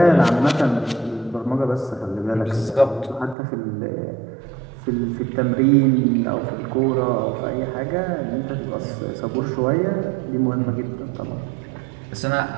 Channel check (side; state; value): left; drops out; at 3.4 s